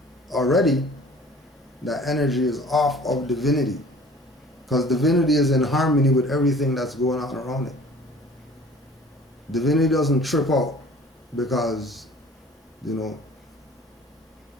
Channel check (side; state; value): both; normal; correlation 0.48